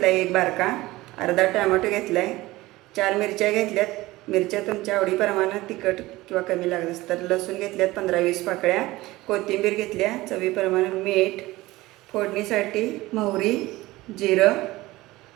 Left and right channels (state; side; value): quieter; left; 18.9 dB